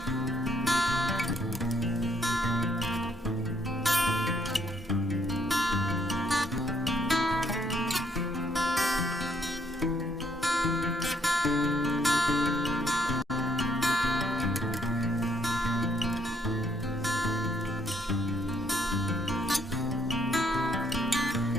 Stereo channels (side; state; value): both; normal; correlation 0.70